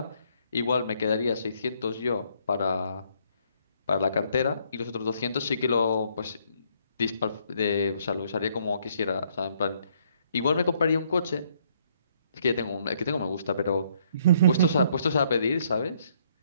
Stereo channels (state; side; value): inverted; both; correlation -0.68